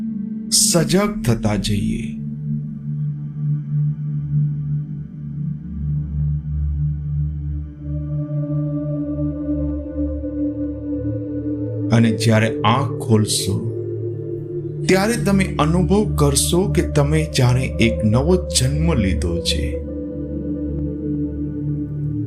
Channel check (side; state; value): both; identical; correlation 1.00